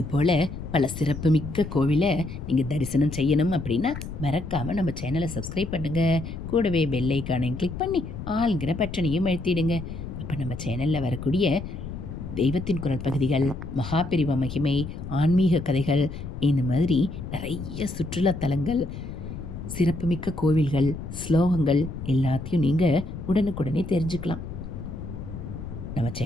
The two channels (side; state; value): left; noise; rumble, 9 dB below the sound